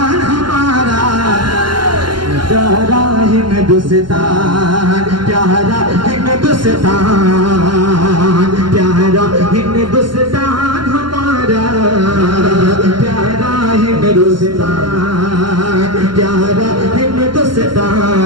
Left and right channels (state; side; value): late; left; 0.72 ms